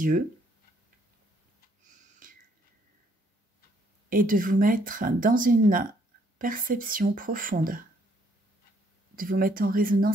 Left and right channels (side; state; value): both; normal; correlation 0.67